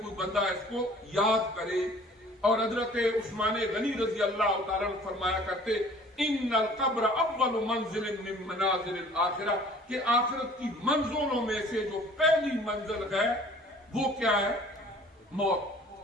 بندہ اس کو یاد کرے۔ اور حضرت عثمان غنی رضی اللہ تعالیٰ عنہ فرمایا کرتے ان القبر اول منزل من منازل الاخرہ، کہ آخرت کی منزلوں میں سے جو پہلی منزل ہے وہ کیا ہے؟ موت۔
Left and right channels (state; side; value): normal; both; correlation 0.50